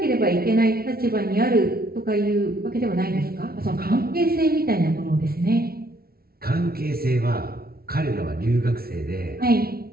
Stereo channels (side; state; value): left; late; 0.44 ms